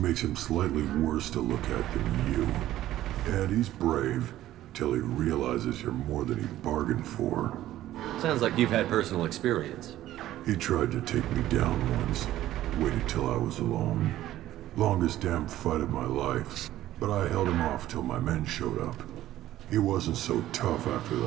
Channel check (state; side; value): quieter; left; 13.9 dB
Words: him slightly worse to look at than you. And he's brave, till he realizes you're more than he bargained for. Sounds like you've had personal experience. He tried to take me down once. Waited till I was alone. Longest damn fight of my life. But I held him off till my men showed up. He wasn't so tough after